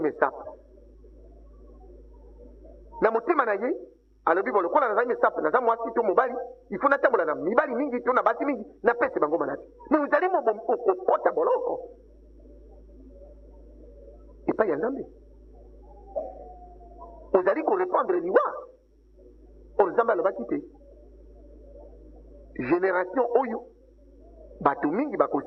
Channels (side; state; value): both; identical; correlation 1.00